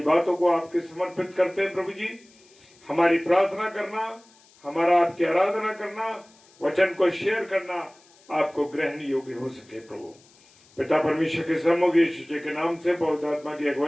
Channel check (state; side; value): noise; left; hiss, 29 dB below the sound